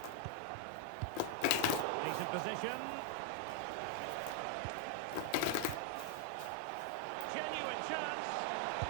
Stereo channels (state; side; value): different; both; correlation 0.00